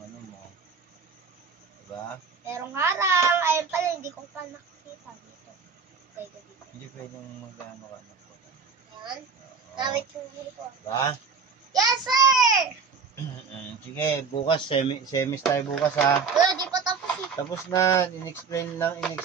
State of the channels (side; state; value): left; quieter; 5.5 dB